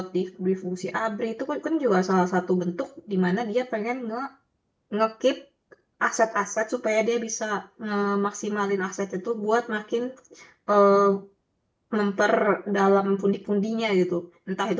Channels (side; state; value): both; identical; correlation 1.00